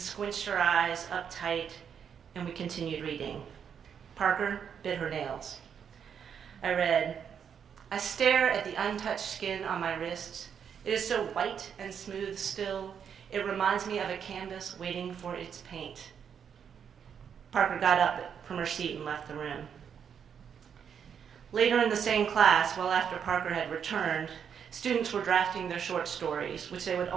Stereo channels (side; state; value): left; quieter; 7.6 dB